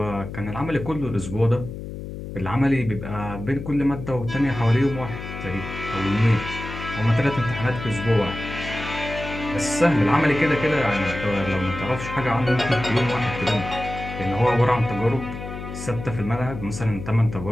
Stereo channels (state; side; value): noise; left; hum, 9 dB below the sound